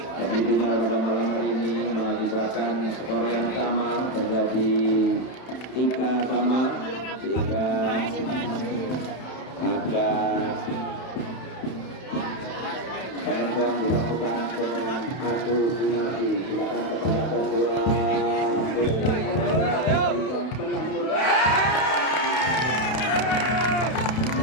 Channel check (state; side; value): late; right; 31 ms